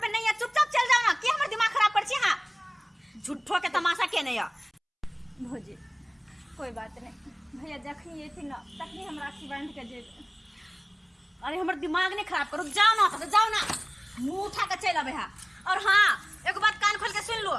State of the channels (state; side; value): identical; both; correlation 1.00